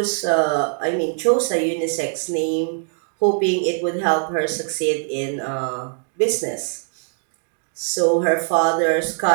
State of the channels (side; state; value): left; silent; digital silence